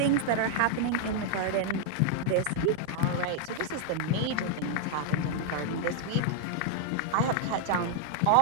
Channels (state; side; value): different; both; correlation -0.01